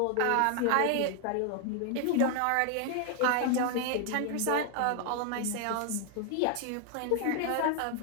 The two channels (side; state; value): both; different; correlation 0.00